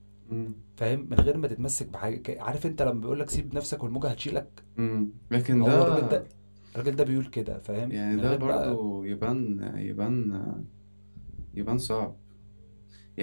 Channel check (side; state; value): both; inverted; correlation -1.00